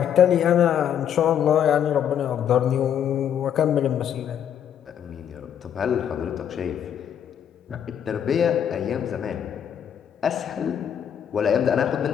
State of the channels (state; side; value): quieter; right; 9.1 dB